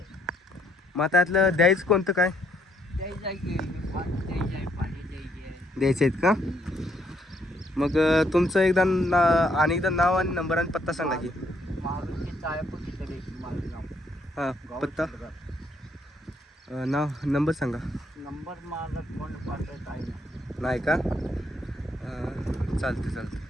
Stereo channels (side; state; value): both; normal; correlation 0.71